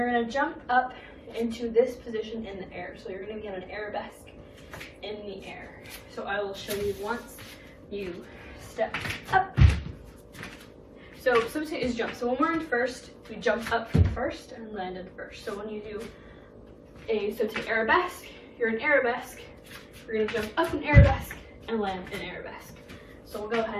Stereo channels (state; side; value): identical; both; correlation 1.00